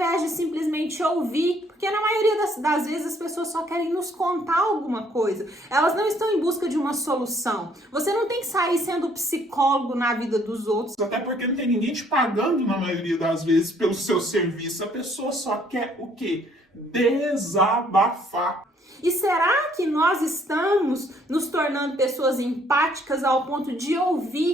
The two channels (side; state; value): both; normal; correlation 0.64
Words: de simplesmente ouvir, porque na maioria das vezes as pessoas só querem nos contar alguma coisa, elas não estão em busca de uma solução. Você não tem que sair sendo psicólogo na vida dos outros. Até porque não tem ninguém te pagando na maioria das vezes pelo seu serviço. A pessoa só quer o quê? Desabafar. E será que nós estamos nos tornando pessoas empáticas ao ponto de